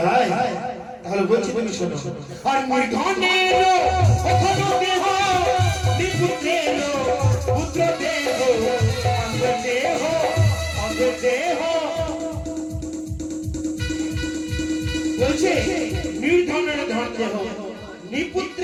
হয় তাহলে বলছি তুমি শোনো আর নির্ধনের ওখানে দেহ নিপুত্রের পুত্র দেহ অঙ্গ দেহ বলছে নির্ধনের ধন দেহ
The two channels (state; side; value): identical; both; correlation 1.00